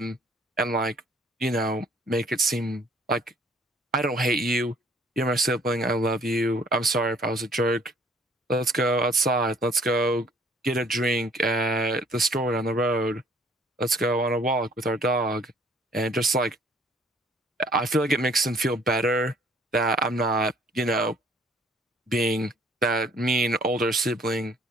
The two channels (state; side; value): normal; both; correlation 0.58